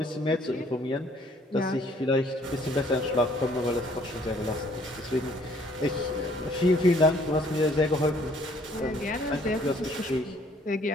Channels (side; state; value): both; normal; correlation 0.61